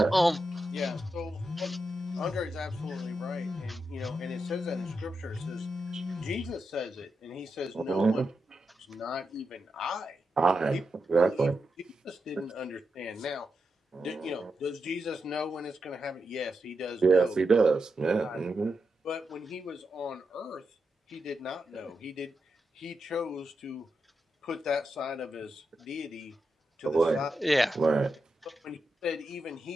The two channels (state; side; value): normal; both; correlation 0.87